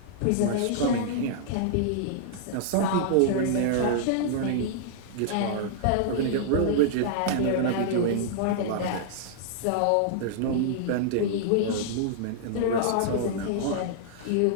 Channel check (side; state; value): both; different; correlation -0.01